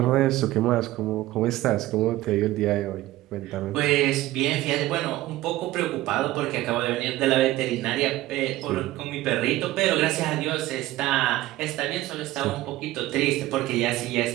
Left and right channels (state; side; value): quieter; left; 16.5 dB